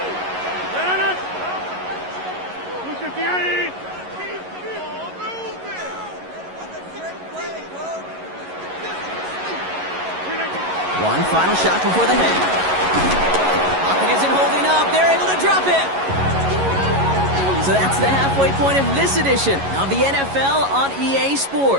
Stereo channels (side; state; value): left; late; 11 ms